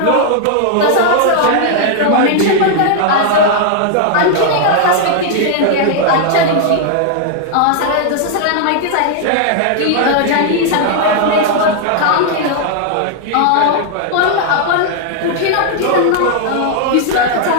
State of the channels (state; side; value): different; both; correlation 0.00